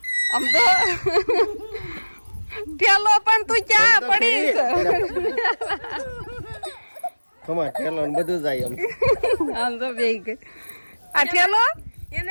સમજો ઠેલો પણ તું ક્યાં પડીશ? કમા ઠેલો ને બધું જાય એમ. આમ તો બેઈ ગઈ આ ઠેલો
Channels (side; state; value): both; inverted; correlation -1.00